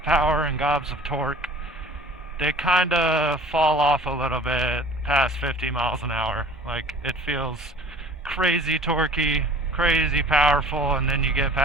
power and gobs of torque. They kind of fall off a little bit past 50 miles an hour. Like, it feels crazy torquey, crazy powerful, and then you get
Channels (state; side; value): normal; both; correlation 0.45